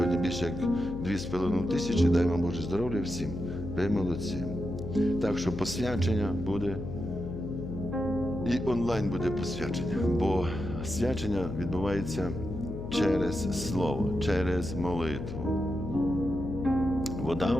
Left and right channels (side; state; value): left; noise; hum, 7 dB below the sound